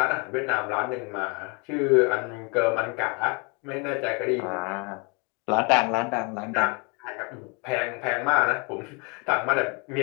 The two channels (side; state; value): right; quieter; 32.2 dB